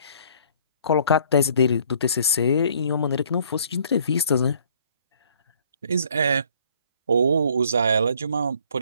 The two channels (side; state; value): both; inverted; correlation -0.59